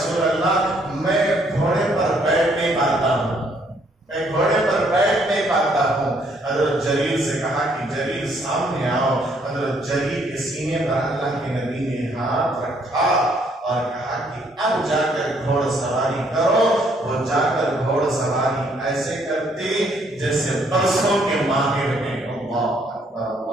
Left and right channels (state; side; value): normal; both; correlation 0.67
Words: اللہ میں گھوڑے پر بیٹھ نہیں پاتا ہوں, میں گھوڑے پر بیٹھ نہیں پاتا ہوں. حضرت جلیل سے کہا کہ جلیل سامنے آؤ. حضرت جلیل کے سینے پر اللہ کے نبی نے ہاتھ رکھا اور کہا کہ اب جا کر گھوڑ سواری کرو. وہ جا کر گھوڑ سواری ایسے کرتے جیسے برسوں کے ماہر ہیں. اللہ اکبر